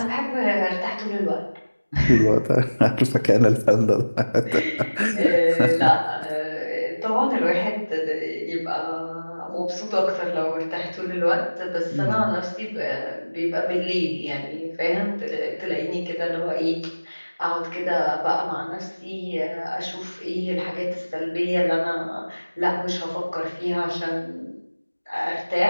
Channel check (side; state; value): both; inverted; correlation -1.00